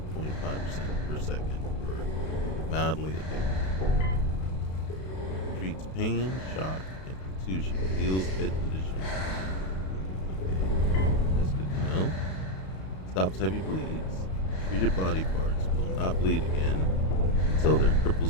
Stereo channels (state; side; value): late; right; 32 ms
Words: 0.5% per second for mildly addicted. Treats pain, shock, and contusion. Heals head condition. Okay, that's good to know. Stops heavy bleeds. Treated body parts will not bleed again until their